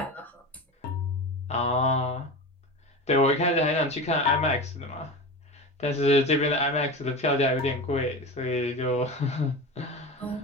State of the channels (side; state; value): both; normal; correlation 0.27